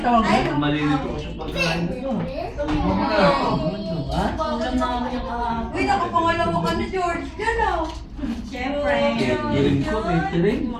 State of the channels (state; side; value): identical; both; correlation 1.00